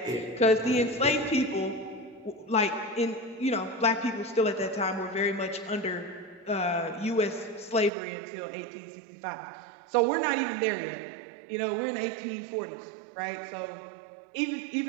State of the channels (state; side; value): drops out; left; at 7.9 s